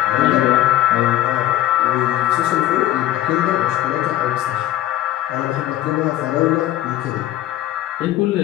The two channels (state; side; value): quieter; right; 13.6 dB